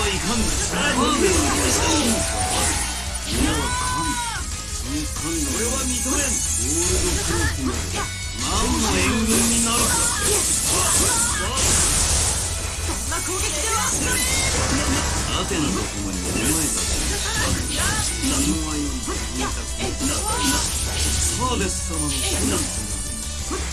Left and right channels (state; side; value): identical; both; correlation 1.00